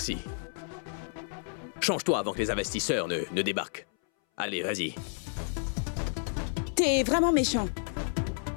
Change-toi avant que les investisseurs ne débarquent. Allez, vas-y. T'es vraiment méchant.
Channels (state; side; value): silent; right; 57 dB below the other